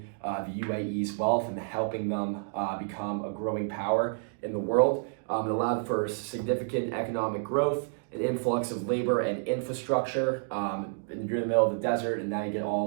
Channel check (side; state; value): left; silent; digital silence